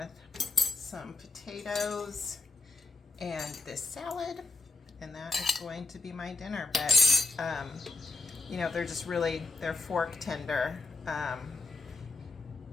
some potatoes and this salad, and that is going to be my dinner. But, you know, they're just really, they're fork tender.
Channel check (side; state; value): right; quieter; 3.4 dB